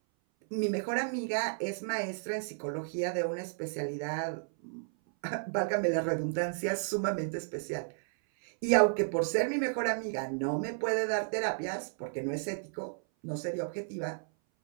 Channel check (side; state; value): left; silent; 56 dB below the other